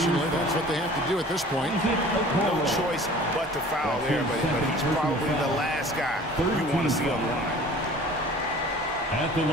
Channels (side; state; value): both; normal; correlation 0.46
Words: That's what they have to do at this point. No choice but to foul there, but he's probably the last guy you want to see on the line. At the